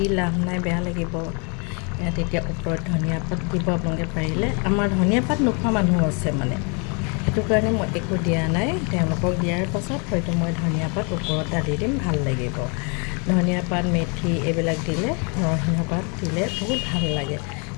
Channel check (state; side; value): quieter; right; 34.8 dB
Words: লাভ নাই, বেয়া লাগিব। ইয়াত এতিয়া ওপৰত ধনিয়া পাত দিব আপোনালোকে পাৰিলে। আমাৰ ধনিয়া পাত নোখোৱা মানুহ আছে মানে, সেইটো কাৰণে মই একো দিয়া নাই। তেওঁলোকক দিয়াৰ পাছত হয়তো মই ধনিয়া পাত ওপৰত ঢালি দিম, ভাল লাগিব। ধনিয়া পাত, মেথি এইবিলাক দিলে, নৰসিংহ পাত দিলে বহুত ভাল লাগে,